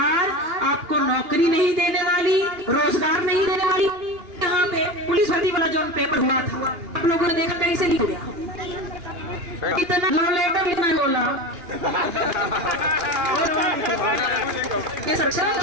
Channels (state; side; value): late; left; 2.8 ms